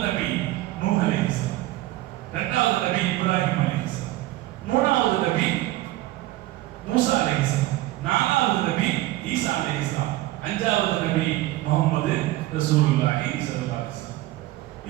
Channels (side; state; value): left; quieter; 16.9 dB